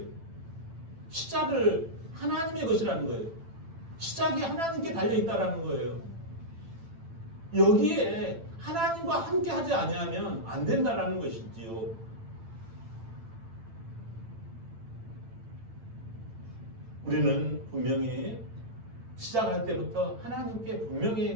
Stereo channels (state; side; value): late; left; 8.9 ms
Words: 시작을 하나님의 것이라는 거예요. 시작이 하나님께 달려있다라는 거예요. 여기에 하나님과 함께 하지 아니하면 안 된다라는 것이지요. 우리는 분명히 시작할 때부터 하나님께